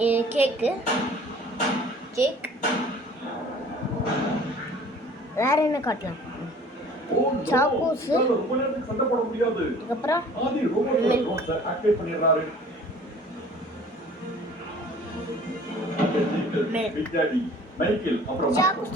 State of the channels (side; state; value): both; normal; correlation 0.49